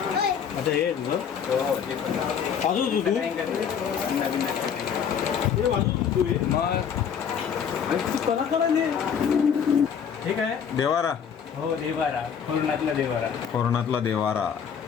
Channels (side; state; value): right; quieter; 7.6 dB